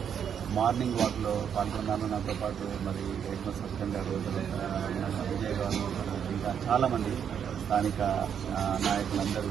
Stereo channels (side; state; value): left; quieter; 8.1 dB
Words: మార్నింగ్ వాక్లో పాల్గొన్నాను. నాతో పాటు మరి హెడ్ మాస్టర్ గారు, విజయ్ గారు, ఇంకా చాలామంది స్థానిక నాయకులందరూ